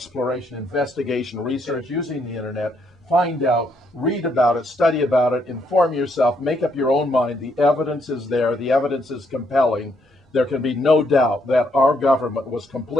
investigation, research using the internet. Find out, read about it, study about it, inform yourself, make up your own mind. The evidence is there. The evidence is compelling. There can be no doubt that our government was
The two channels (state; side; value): normal; both; correlation 0.73